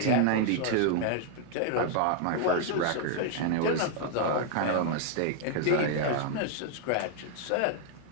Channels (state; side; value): different; both; correlation 0.00